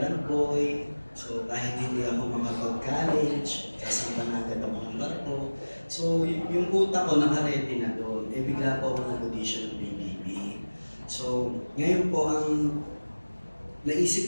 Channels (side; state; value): both; inverted; correlation -1.00